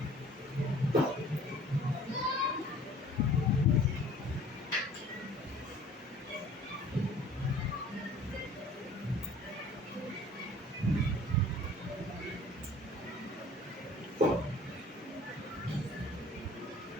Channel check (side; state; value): both; normal; correlation 0.50